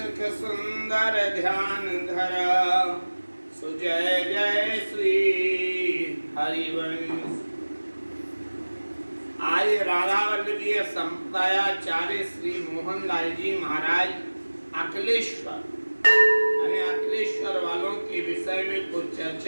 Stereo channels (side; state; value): both; inverted; correlation -1.00